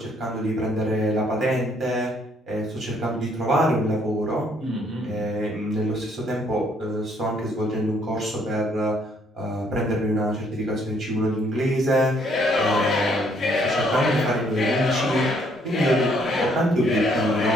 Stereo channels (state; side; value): normal; both; correlation 0.67